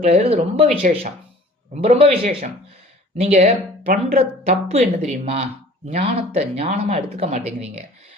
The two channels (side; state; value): both; normal; correlation 0.48